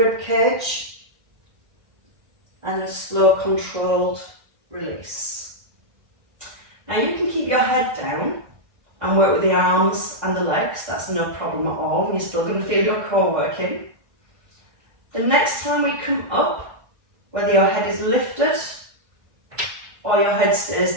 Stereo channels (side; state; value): left; late; 1.4 ms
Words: cage, and a slow controlled release. Now you can keep your head down and work with the arms and the legs, that's no problem at all, and you're still going to feel your core working. The next time we come up, whether your head is lifted or your head